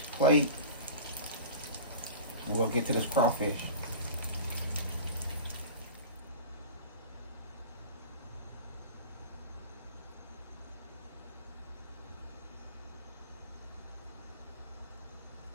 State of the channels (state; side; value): inverted; both; correlation -0.35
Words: plate. And we'll get to this crawfish.